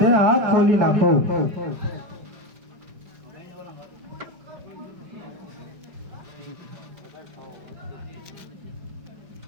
હાથ ખોલી નાખો.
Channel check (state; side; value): late; left; 5.2 ms